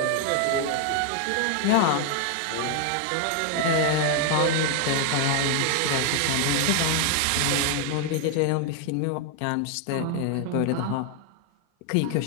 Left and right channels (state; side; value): different; both; correlation 0.00